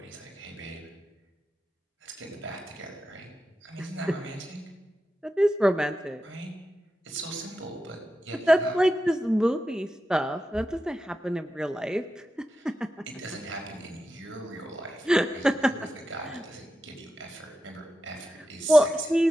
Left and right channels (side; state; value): both; normal; correlation 0.90